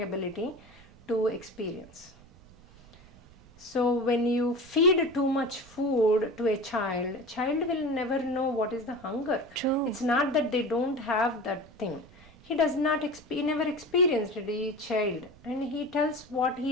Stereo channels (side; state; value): right; noise; rumble, 24 dB below the sound